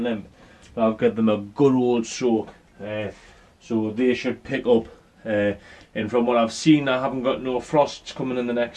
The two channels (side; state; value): both; identical; correlation 1.00